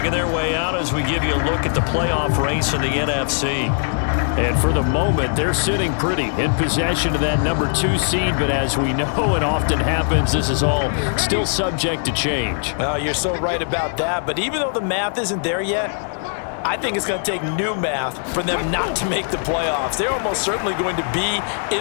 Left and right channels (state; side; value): silent; right; 65 dB below the other